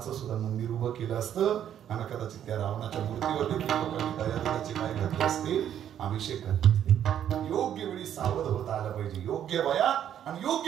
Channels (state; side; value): quieter; left; 10.0 dB